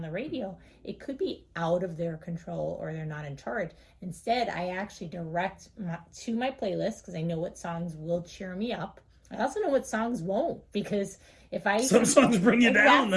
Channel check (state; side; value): identical; both; correlation 1.00